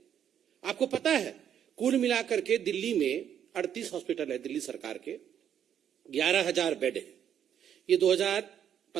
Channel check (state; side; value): quieter; left; 9.3 dB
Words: आपको पता है कुल मिलाकर के दिल्ली में 38 हॉस्पिटल है, दिल्ली सरकार के 11,000 बेड है। ये